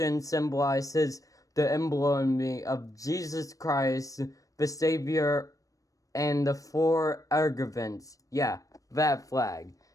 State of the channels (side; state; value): right; late; 0.16 ms